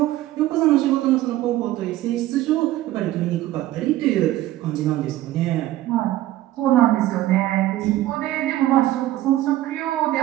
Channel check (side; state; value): left; quieter; 15.0 dB